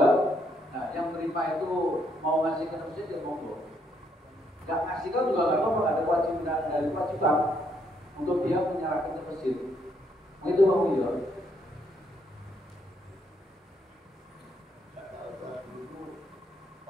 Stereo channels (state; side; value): normal; both; correlation 0.73